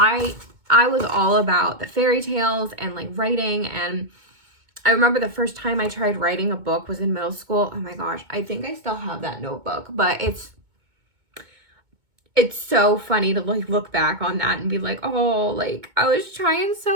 was all about the fairy tales and like writing. And I remember the first time I tried writing a book was in middle school. Oh my gosh, I think I still have that notebook, but it's so funny to like look back on that and be like, oh, like I was trying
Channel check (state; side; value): late; left; 2.2 ms